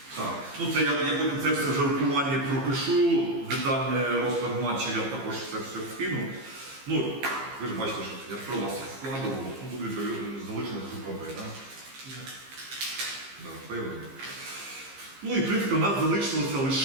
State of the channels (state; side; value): late; left; 15 ms